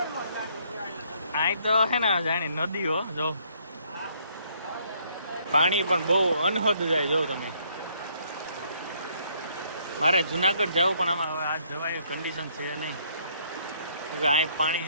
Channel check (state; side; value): inverted; both; correlation -0.66